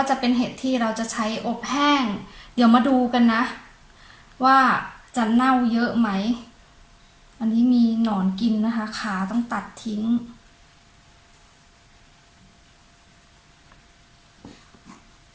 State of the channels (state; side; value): identical; both; correlation 1.00